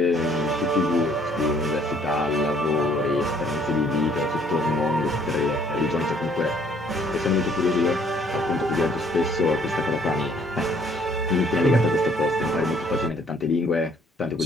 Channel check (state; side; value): normal; both; correlation 0.62